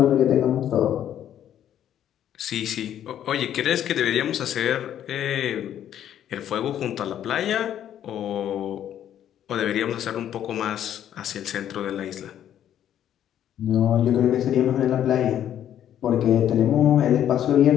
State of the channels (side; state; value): right; quieter; 10.6 dB